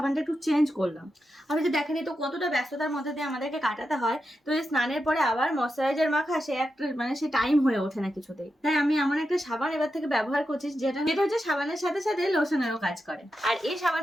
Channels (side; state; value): both; normal; correlation 0.88